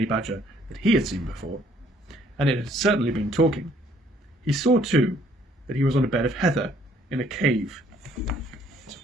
badger that he had seen before, and it had certainly been talking. He saw, too, that he was on a bed of heather in a cave. It's a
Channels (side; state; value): both; normal; correlation 0.63